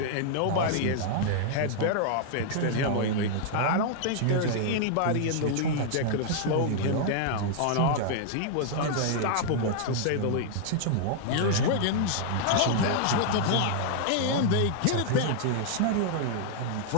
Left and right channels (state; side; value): different; both; correlation -0.01